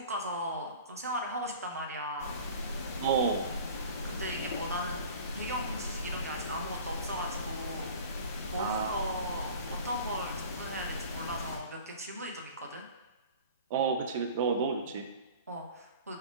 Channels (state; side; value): inverted; both; correlation -0.42